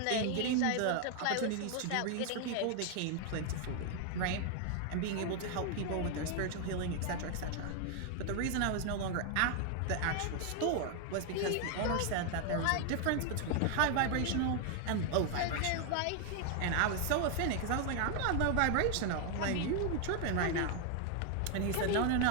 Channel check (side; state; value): both; different; correlation 0.00